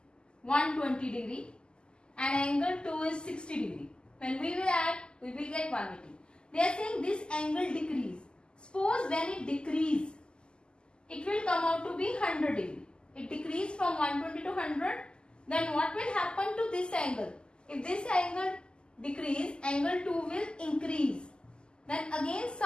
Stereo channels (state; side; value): late; right; 0.048 ms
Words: 120 degree and angle 2 is 60 degree, when we will add, we will get 180. They are saying this angle decrease. Suppose when it decrease, it will come out to be 100 degree. It decrease from 120 to 100. Then what will happen to this angle? If this angle decrease, angle 2 will increase. Then again